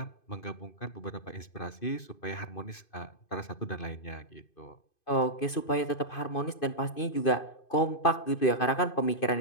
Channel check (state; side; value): late; right; 2.5 ms